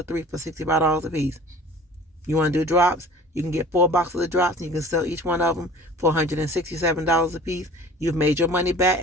3 for $65 a piece. You want to do drops? You can get 4 boxes of drops and you can sell each one of them for $167 a piece. You've made your money back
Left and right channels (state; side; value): normal; both; correlation 0.45